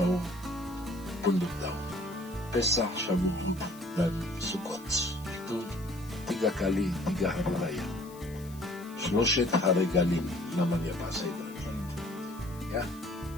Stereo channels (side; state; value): left; noise; hiss, 21 dB below the sound